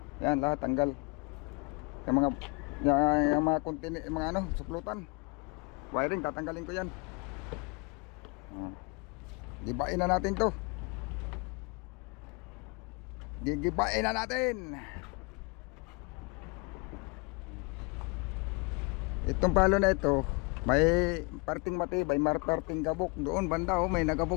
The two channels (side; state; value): right; quieter; 31.3 dB